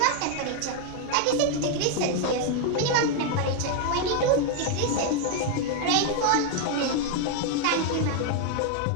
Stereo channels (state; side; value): different; both; correlation 0.00